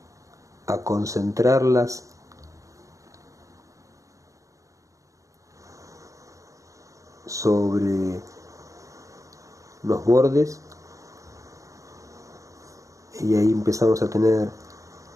a concentrarlas sobre los bordes, y ahí empezamos a tener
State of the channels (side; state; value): left; late; 0.16 ms